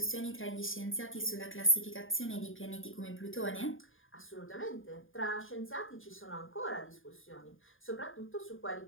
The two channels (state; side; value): late; right; 0.59 ms